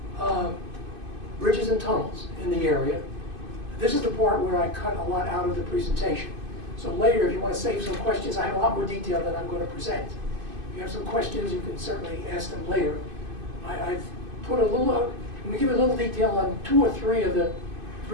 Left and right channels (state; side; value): late; left; 2.5 ms